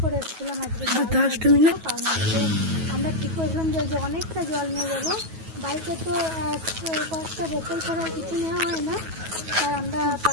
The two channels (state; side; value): late; left; 9.3 ms